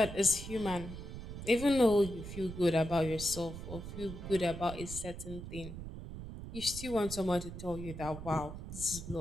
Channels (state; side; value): noise; right; rumble, 9 dB below the sound